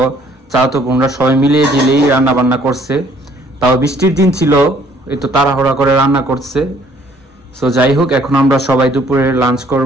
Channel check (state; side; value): normal; both; correlation 0.61